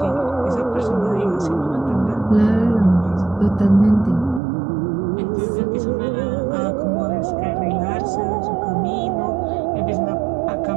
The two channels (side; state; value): left; drops out; at 4.4 s